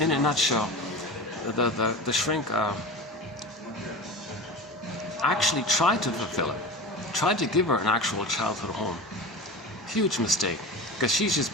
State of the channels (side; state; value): both; normal; correlation 0.31